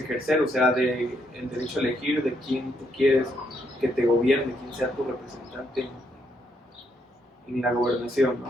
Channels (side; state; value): both; normal; correlation 0.75